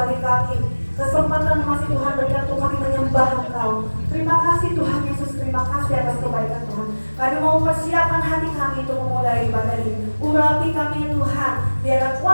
kami. Kesempatan masih Tuhan berikan untuk kami menyembah Engkau. Terima kasih Tuhan Yesus, terima kasih atas kebaikan Tuhan. Kami mau mempersiapkan hati kami untuk memulai ibadah ini. Urapi kami Tuhan, biarlah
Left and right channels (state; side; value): inverted; both; correlation -1.00